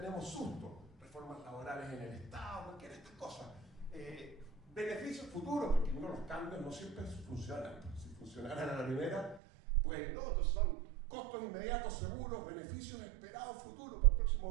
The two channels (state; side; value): drops out; left; at 9.4 s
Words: susto. Reformas laborales en el Estado, cualquiera de estas cosas. Beneficios futuros, porque uno los cambios no siempre funcionan. Si funcionaran a la primera, pues no, entonces son costos inmediatos seguros, beneficios esperados futuros para el